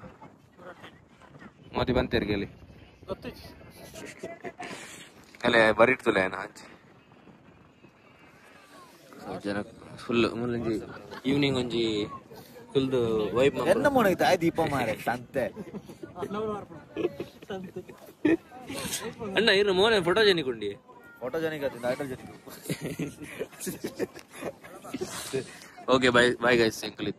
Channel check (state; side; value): identical; both; correlation 1.00